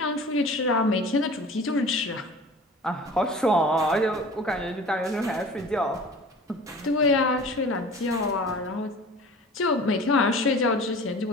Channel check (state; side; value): normal; both; correlation 0.41